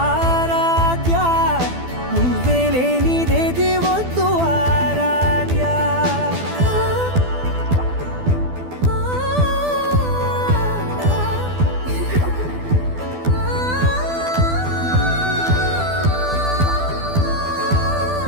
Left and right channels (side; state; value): left; late; 12 ms